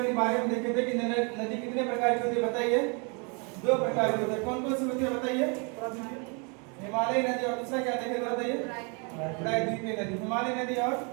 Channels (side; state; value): left; quieter; 34.4 dB